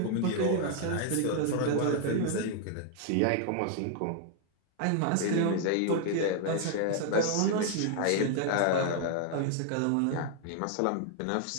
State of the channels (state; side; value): different; both; correlation 0.00